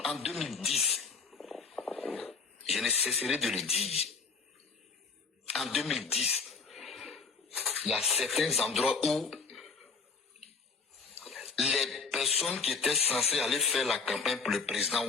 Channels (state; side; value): quieter; right; 4.8 dB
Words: en 2010, je ne cesserai de le dire. En 2010, il y a certains endroits où les personnes qui étaient censées aller faire la campagne pour le président